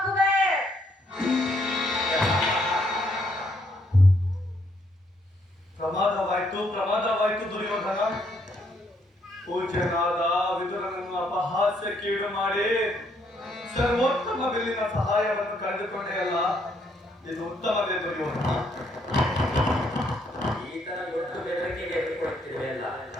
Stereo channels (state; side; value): normal; both; correlation 0.71